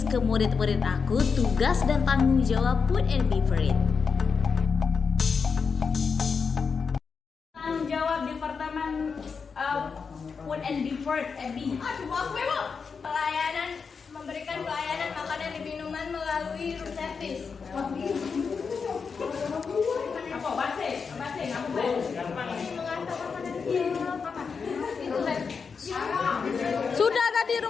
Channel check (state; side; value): quieter; right; 5.5 dB